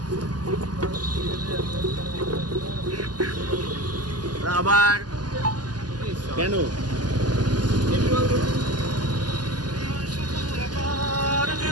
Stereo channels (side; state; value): left; late; 0.70 ms